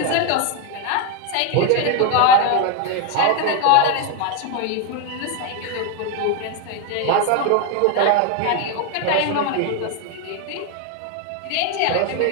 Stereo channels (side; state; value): both; different; correlation 0.01